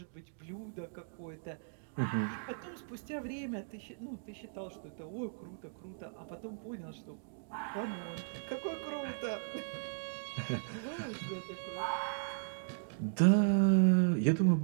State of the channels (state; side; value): silent; left; digital silence